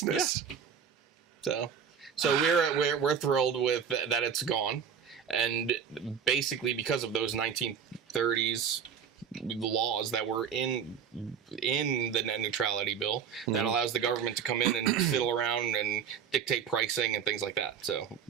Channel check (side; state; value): left; quieter; 7.5 dB